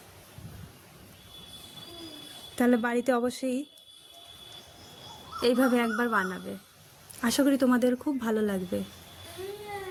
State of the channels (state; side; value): identical; both; correlation 1.00